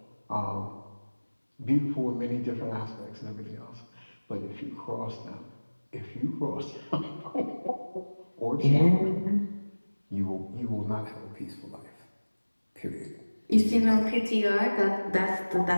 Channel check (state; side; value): inverted; both; correlation -1.00